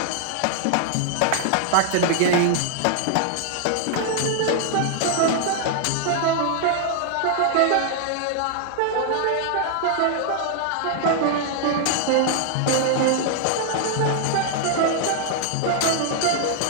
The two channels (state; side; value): different; both; correlation 0.00